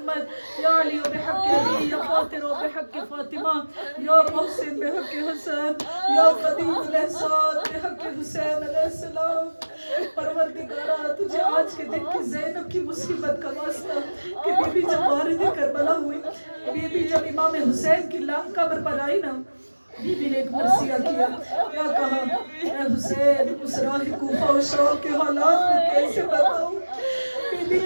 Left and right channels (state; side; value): inverted; both; correlation -1.00